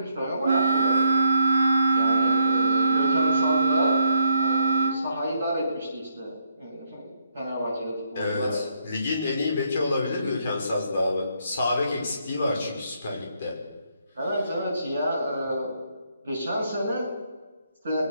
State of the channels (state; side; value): inverted; both; correlation -0.75